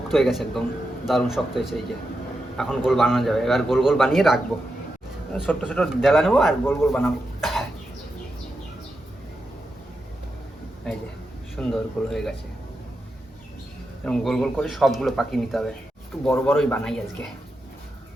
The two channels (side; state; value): both; normal; correlation 0.87